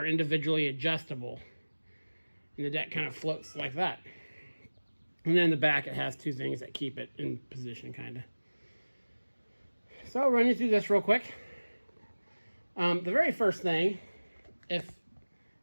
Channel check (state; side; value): inverted; both; correlation -1.00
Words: individually adjustable. And the deck kind of floats like that. And then in the back it has two things that keep it in position kind of. So I'll run you through this real quick. The very first thing, if